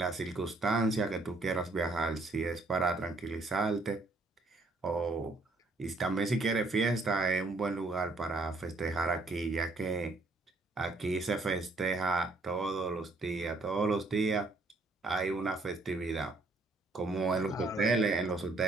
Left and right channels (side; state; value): left; quieter; 3.2 dB